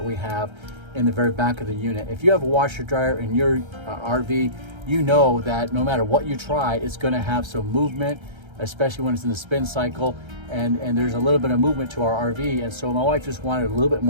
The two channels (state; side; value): late; left; 1.3 ms